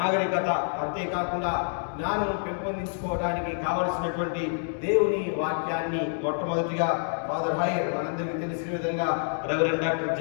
అంతేకాకుండా జ్ఞానం పెంపొందించుకోవడానికి కావలసినటువంటి దేవుని వాక్యాన్ని మొట్టమొదటిగా ఫాదర్ హైర్, మనందరికీ తెలిసిన విధంగా reverend doctor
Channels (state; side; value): silent; right; digital silence